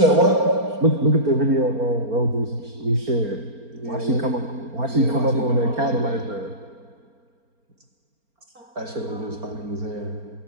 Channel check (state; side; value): late; left; 4.4 ms